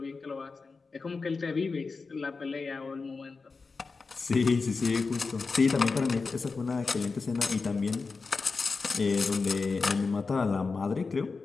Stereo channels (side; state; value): right; quieter; 4.4 dB